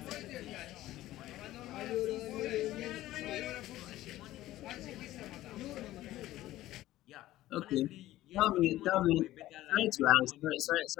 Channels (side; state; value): right; quieter; 15.4 dB